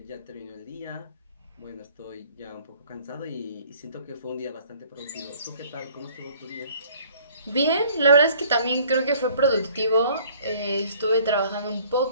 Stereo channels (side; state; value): both; inverted; correlation -0.55